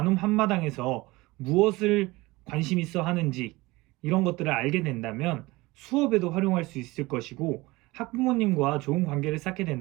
한마당에서 무엇을 관심 있어 하는지 이런 것들을 알게 된다면 수업에도 활용할 수 있을 것이고 학부모님과 좋은 관계를 쌓게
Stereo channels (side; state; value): left; quieter; 21.4 dB